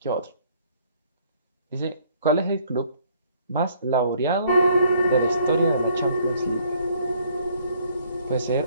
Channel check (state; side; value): inverted; both; correlation -0.63